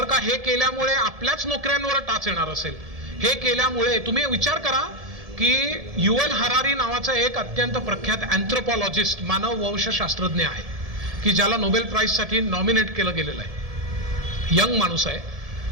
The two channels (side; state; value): left; late; 1.7 ms